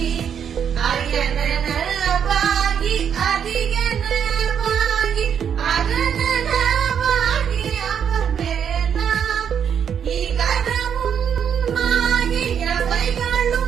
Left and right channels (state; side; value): quieter; left; 8.0 dB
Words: அயனனவாகி அதிகனவாகி அரணனவாகி அவமேலாம் இகரமுமாகி